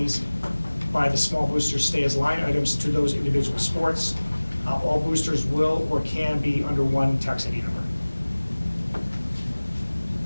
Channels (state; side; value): inverted; both; correlation -1.00